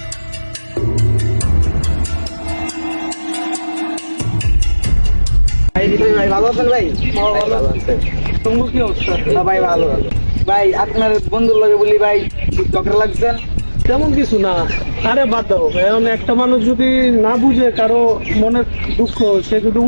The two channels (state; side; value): inverted; both; correlation -1.00